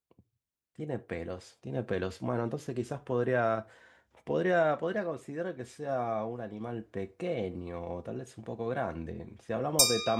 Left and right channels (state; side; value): identical; both; correlation 1.00